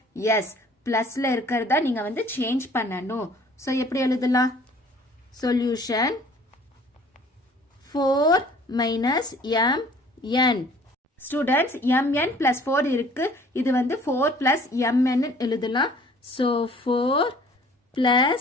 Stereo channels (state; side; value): normal; both; correlation 0.53